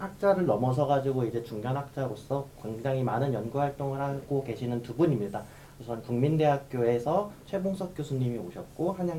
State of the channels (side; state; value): both; identical; correlation 1.00